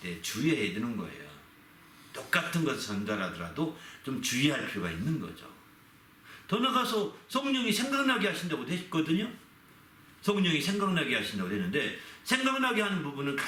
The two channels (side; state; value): both; identical; correlation 1.00